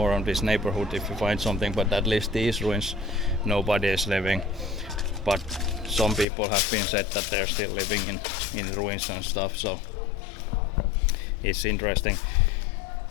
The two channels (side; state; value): right; drops out; at 6.2 s